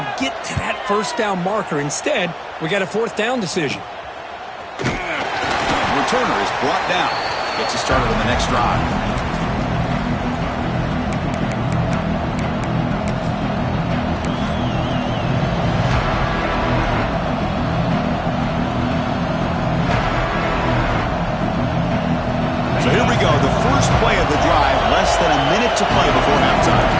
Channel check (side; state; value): both; identical; correlation 1.00